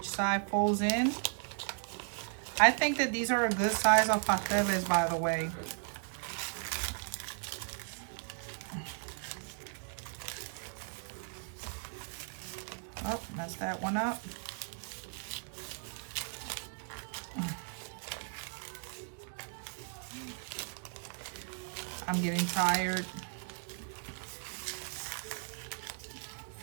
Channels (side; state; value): left; silent; 54 dB below the other